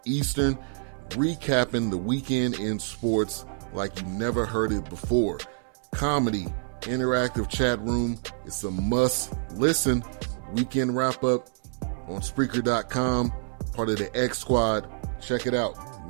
Eastern, recapping the weekend in sports like you never heard it before. Comedy, interactive chat room, it's a must-listen. Weekend wrap-up on Spreaker.com, part of the X Squad. Check it out.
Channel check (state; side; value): silent; left; digital silence